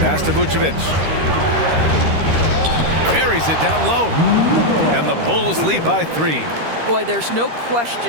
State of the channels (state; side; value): late; left; 13 ms